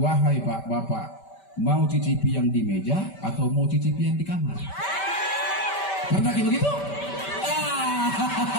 Pak, Bapak, mau cicipi yang di meja atau mau cicipi yang di kamar? Pernah kayak begitu?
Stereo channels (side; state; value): right; late; 5.2 ms